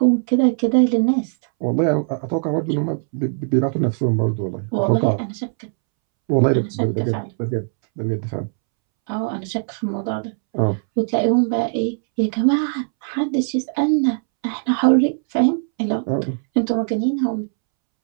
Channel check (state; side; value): silent; left; 66 dB below the other